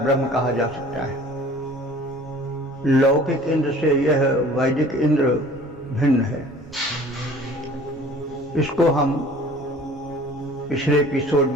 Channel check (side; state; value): right; noise; rumble, 25 dB below the sound